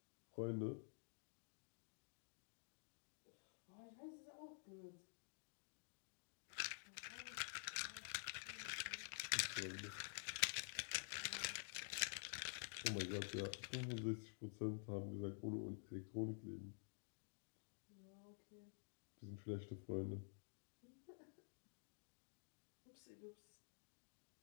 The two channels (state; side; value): silent; right; digital silence